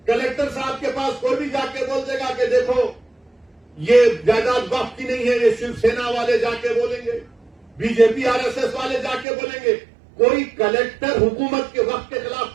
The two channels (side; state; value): left; drops out; at 9.2 s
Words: कलेक्टर साहब के पास कोई भी जाके बोल देगा कि देखो ये जायदाद वक्फ की नहीं है, ये शिवसेना वाले जाके बोलेंगे, बीजेपी आरएसएस वाले जाके बोलेंगे। कोई कलेक्टर हुकूमत के वक्त के खिलाफ